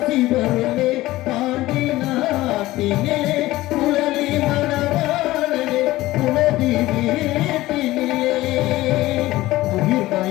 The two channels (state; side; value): quieter; right; 17.4 dB